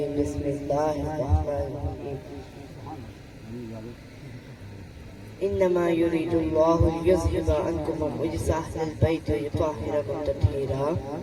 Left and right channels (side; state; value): both; identical; correlation 1.00